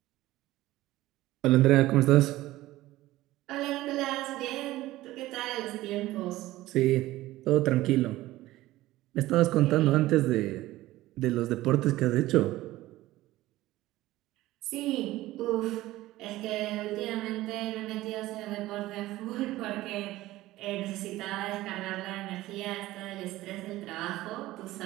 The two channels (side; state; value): left; quieter; 16.8 dB